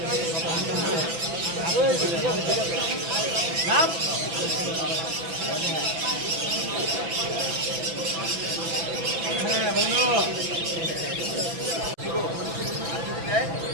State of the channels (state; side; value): late; left; 6.0 ms